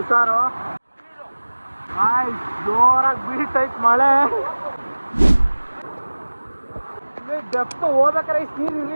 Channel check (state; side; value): inverted; both; correlation -1.00